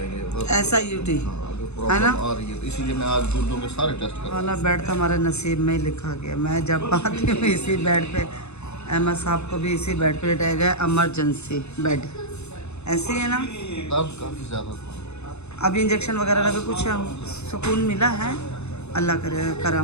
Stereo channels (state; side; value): late; right; 0.81 ms